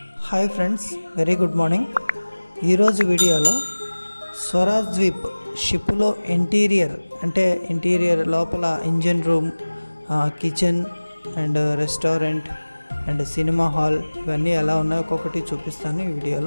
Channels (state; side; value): inverted; both; correlation -1.00